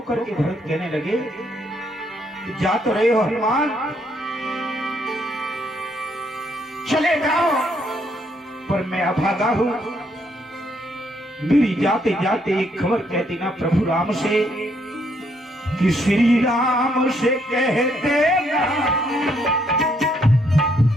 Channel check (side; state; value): both; normal; correlation 0.72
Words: करके भरत कहने लगे, जा तो रहे हो हनुमान, चले जाओ, पर मैं अभागा हूं। मेरी जाते जाते एक खबर कहती ना प्रभु राम से कि श्री राम से कह देना,